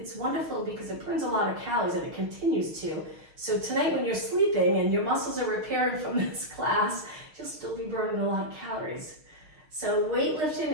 wonderful because it burns a lot of calories and it continues to. So tonight when you're sleeping and your muscles are repairing from this class, you'll still be burning a lot of calories. So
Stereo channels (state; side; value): late; left; 6.5 ms